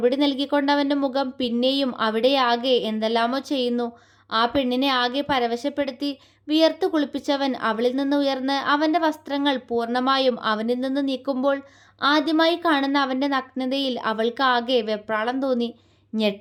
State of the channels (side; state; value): both; identical; correlation 1.00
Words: നൽകിക്കൊണ്ട് അവൻ്റെ മുഖം പിന്നെയും അവിടെ ആകെ എന്തെല്ലാമോ ചെയ്യുന്നു. ആ പെണ്ണിനെ ആകെ പരവശപ്പെടുത്തി വിയർത്തു കുളിപ്പിച്ചവൻ അവളിൽ നിന്ന് ഉയർന്ന് അവൻ്റെ വസ്ത്രങ്ങൾ പൂർണ്ണമായും അവനിൽ നിന്ന് നീക്കുമ്പോൾ ആദ്യമായി കാണുന്ന അവൻ്റെ നഗ്നതയിൽ അവൾക്ക് ആകെ വെപ്രാളം തോന്നി,